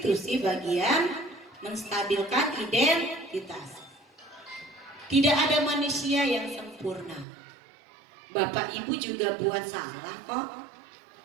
bagian menstabilkan identitas. Tidak ada manusia yang sempurna. Bapak Ibu juga buat salah kok.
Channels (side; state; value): left; drops out; at 7.2 s